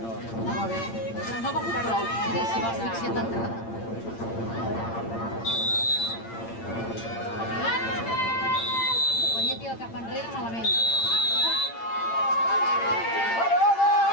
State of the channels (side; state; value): right; late; 8.8 ms